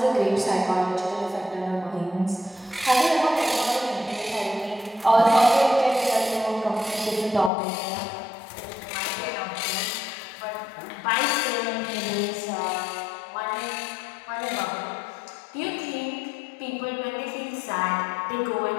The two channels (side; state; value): right; drops out; at 7.5 s